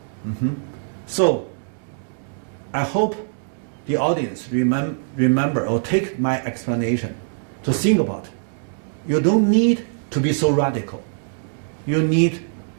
So I hope the audience remember or take my explanation to think about. You don't need to be so radical. You need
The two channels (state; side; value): silent; left; digital silence